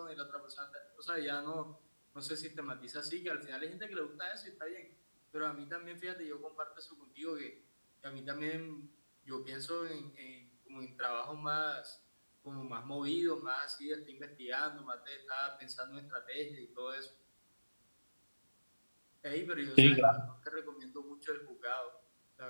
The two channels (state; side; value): inverted; both; correlation -1.00